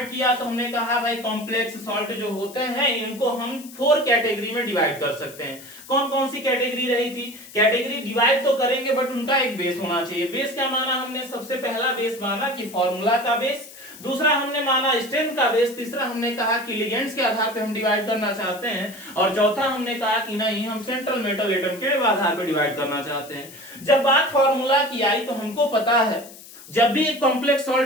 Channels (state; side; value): noise; left; hiss, 18 dB below the sound